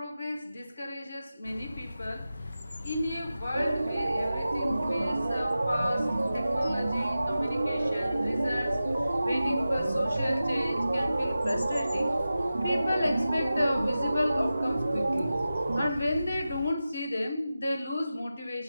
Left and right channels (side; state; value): both; inverted; correlation -0.94